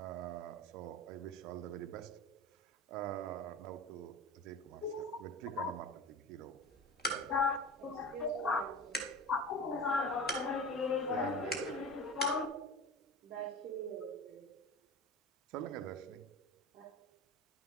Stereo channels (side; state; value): both; normal; correlation 0.32